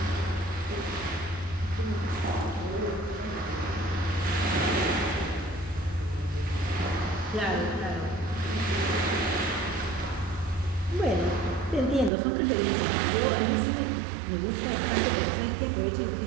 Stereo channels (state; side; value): drops out; left; at 12.1 s